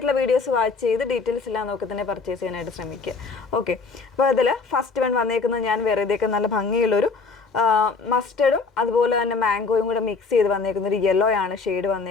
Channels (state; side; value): quieter; right; 4.4 dB